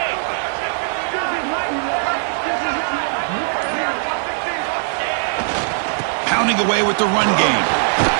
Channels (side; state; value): left; silent; digital silence